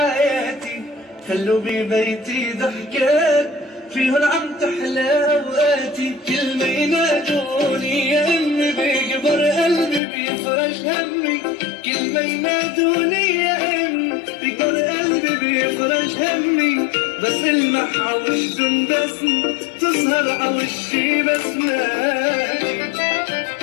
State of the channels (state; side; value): drops out; right; at 10.0 s